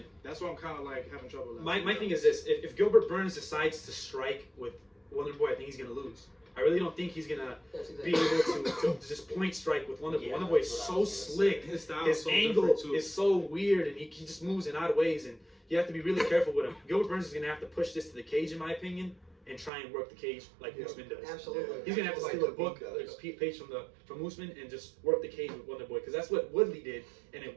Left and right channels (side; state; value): left; drops out; at 19.7 s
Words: that's why I'm kind of like having trouble. My thing is this: if Gilbert Burns decides to strike with Wonder Boy, I think he's gonna lose. I really don't think he's gonna That's be exactly. able to just point strike with Wonder Boy. Yeah, Wonder Boy is that's so what I was gonna slick. His style His is so angle different, too. is so weird, and he just moves in odd ways, and you have to be really careful with him. Gilbert Burns is gonna have to push this to the cage, in my opinion, and try and work the cage like Usman does. Absolutely. He's gonna have to Like steal a Khabib book, does. like a page from Usman, and just work the cage with Wonder Boy, because that's what Woodley did, and